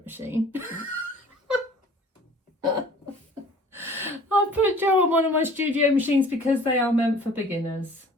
machine. I put Joe on one of my studio machines because they are meant for beginners.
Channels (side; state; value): both; normal; correlation 0.49